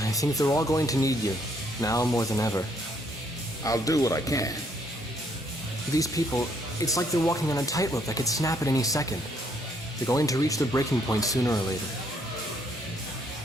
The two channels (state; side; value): normal; both; correlation 0.69